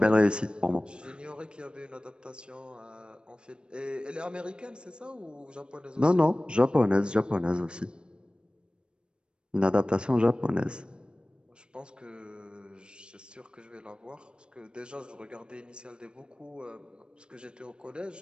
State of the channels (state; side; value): late; left; 0.053 ms